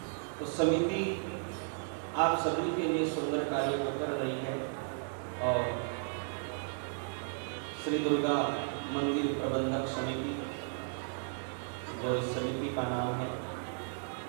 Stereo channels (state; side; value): silent; left; digital silence